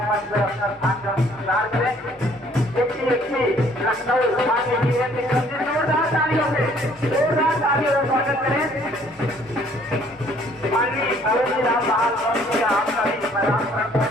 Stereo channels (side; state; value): both; normal; correlation 0.60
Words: स्थान का इंतजार करें। लखनऊ माननीय जी ने विक्रम जी जोरदार तालियों से स्वागत करें। माननीय अरुण राम बहाल जी का आपका भी मैदान पर